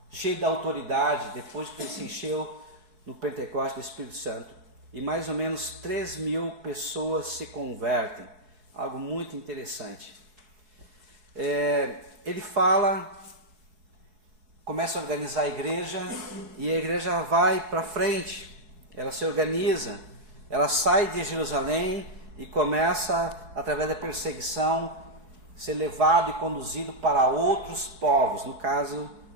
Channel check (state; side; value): late; left; 4.7 ms